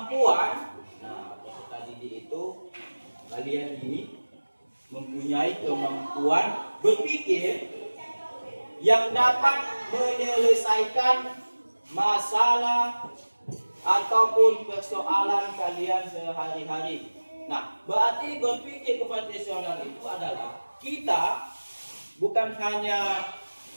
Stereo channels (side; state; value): both; inverted; correlation -1.00